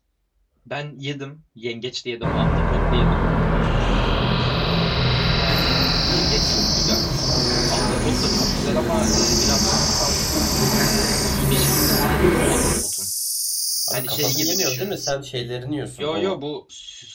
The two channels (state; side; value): identical; both; correlation 1.00